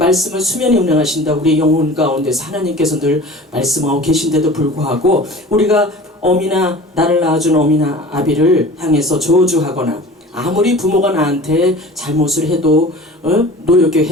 수면에 운행하신다. 우리 영혼 가운데서 하나님께서 늘 말씀하고 계신데도 불구하고 우리가 어미나 나를 낳아준 어미나 아비를 향해서 저주하거나 아무리 부모가 나한테 잘못을 해도 노엽게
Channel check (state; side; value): normal; both; correlation 0.40